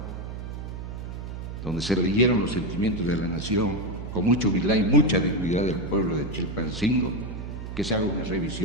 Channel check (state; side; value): noise; right; hum, 8 dB below the sound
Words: donde se leyeron los sentimientos de la nación, con mucha humildad y mucha dignidad del pueblo de Chilpancingo, que se haga una